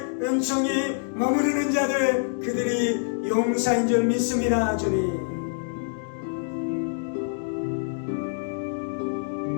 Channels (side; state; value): right; silent; digital silence